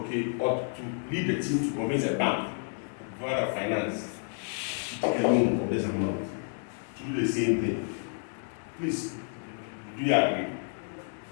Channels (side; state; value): right; silent; 58 dB below the other